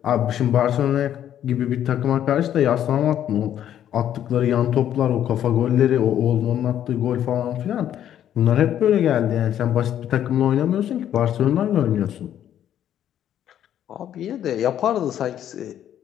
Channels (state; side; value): quieter; right; 10.6 dB